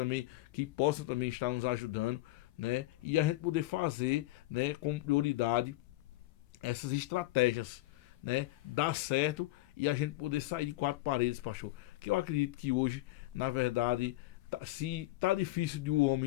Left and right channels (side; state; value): right; quieter; 17.7 dB